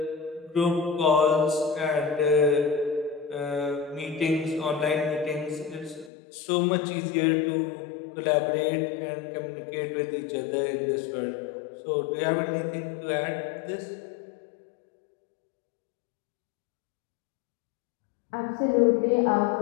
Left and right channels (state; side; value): drops out; right; at 6.1 s